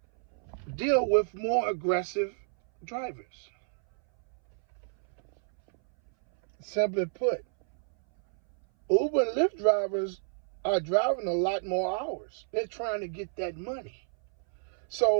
deal with more aggressive drivers? Simply put, Uber and Lyft drivers are driving a lot more hours. They're trying to get that money.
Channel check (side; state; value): left; silent; 58 dB below the other